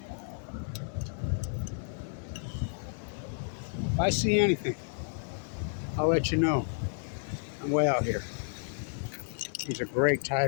If I see anything, I'll let you know. I'm way out here. These are great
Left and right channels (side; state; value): right; silent; 57 dB below the other